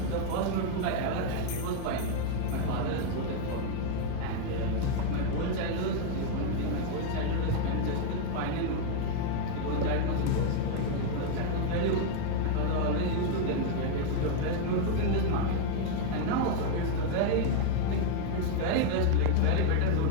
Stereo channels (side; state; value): both; different; correlation 0.00